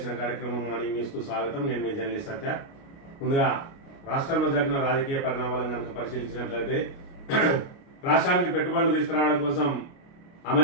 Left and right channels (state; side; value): late; right; 29 ms